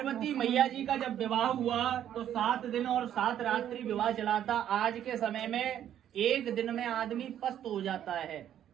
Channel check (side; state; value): left; quieter; 10.6 dB